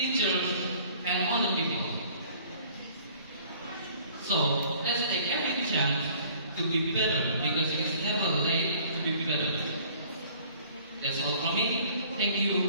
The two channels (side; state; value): both; inverted; correlation -0.54